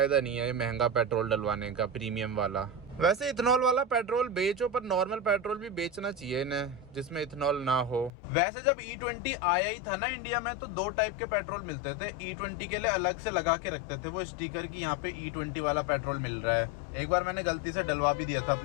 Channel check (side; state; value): right; drops out; at 8.1 s